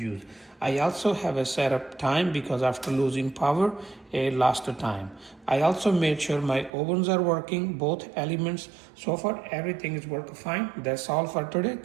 I also have a setup time because after losing power, it lost the time. I also made sure my ovens are working, both elements. So far, everything is working fine. That's all for today.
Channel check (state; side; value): drops out; left; at 6.7 s